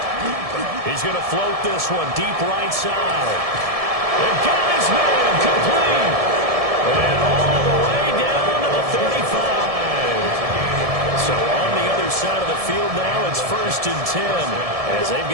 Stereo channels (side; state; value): left; late; 1.7 ms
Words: He's going to float this one deep right side. And got his man complete. And all the way down to the 35. So on the other side of the field now, it's 1st and 10 as they've